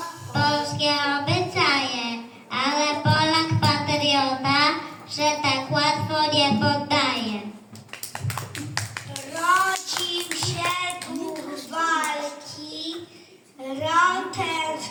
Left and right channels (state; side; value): identical; both; correlation 1.00